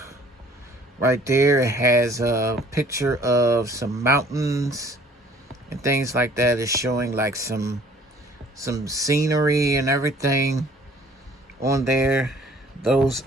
right there, it has a picture of some mountains and things like that. It's showing like some scenery and everything on there. Those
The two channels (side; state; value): both; normal; correlation 0.55